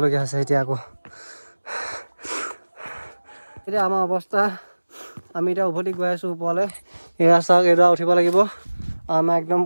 হৈছে এতিয়া আকৌ এতিয়া আমাৰ অৱস্থা আমি এতিয়া উভতি গৈ আছোঁ ওপৰলৈ এয়া চাওক এডৰা উঠিব লাগিব আমাৰ একদম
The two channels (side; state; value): both; inverted; correlation -1.00